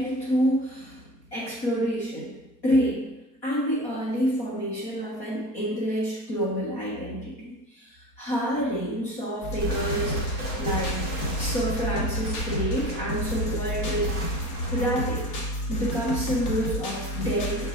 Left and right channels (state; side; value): late; right; 4.3 ms